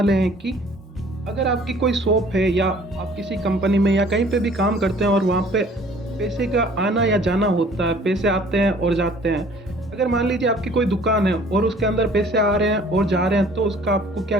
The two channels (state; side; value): normal; both; correlation 0.54